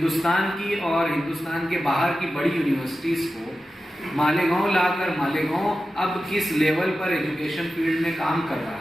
की और हिंदुस्तान के बाहर की बड़ी यूनिवर्सिटीज़ को मालेगांव लाकर मालेगांव अब किस लेवल पर एजुकेशन फील्ड में काम कर रहा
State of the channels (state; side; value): normal; both; correlation 0.93